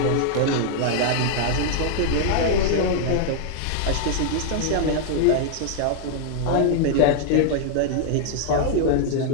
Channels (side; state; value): both; different; correlation -0.01